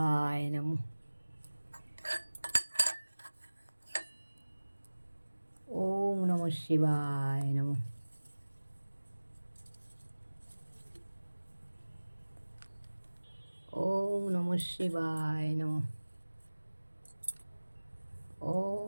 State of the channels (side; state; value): both; inverted; correlation -1.00